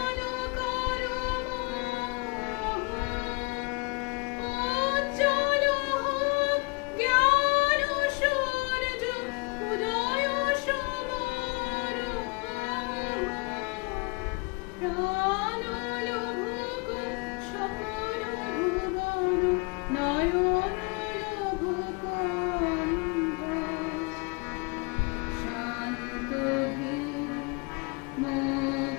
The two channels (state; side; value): quieter; right; 29.9 dB